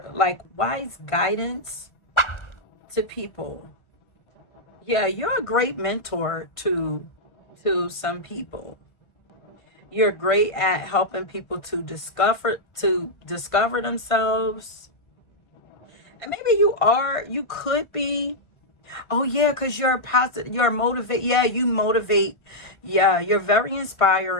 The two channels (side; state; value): right; late; 1.5 ms